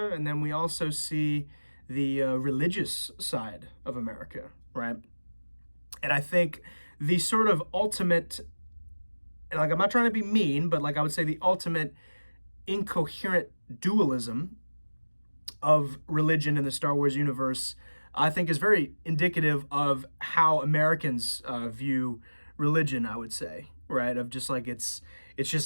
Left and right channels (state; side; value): inverted; both; correlation -1.00